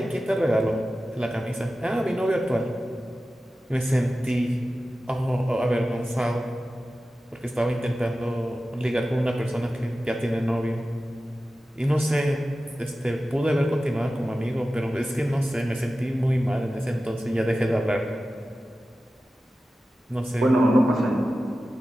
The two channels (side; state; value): both; normal; correlation 0.94